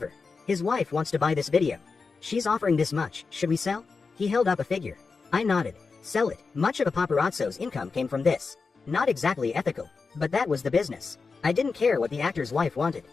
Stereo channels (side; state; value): right; quieter; 4.6 dB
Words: his wife wants to buy this video. She's offering this much, should we sell? He held up a figure. I nodded. Sell it. Much of a paparazzo's income came from this. Not exactly ethical, but that was the business. I didn't care what the actor's wife wanted.